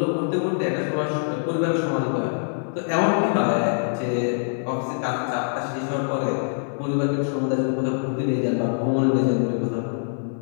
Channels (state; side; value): silent; right; 57 dB below the other